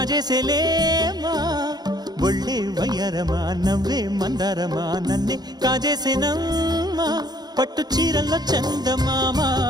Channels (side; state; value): left; late; 0.20 ms